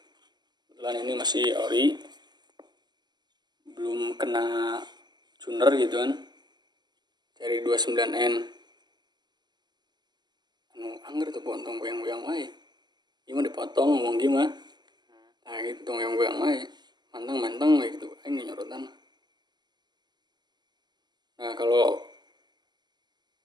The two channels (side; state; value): left; late; 0.21 ms